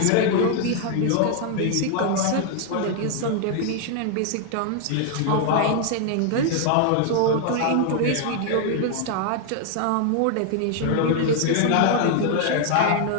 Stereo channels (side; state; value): both; different; correlation 0.00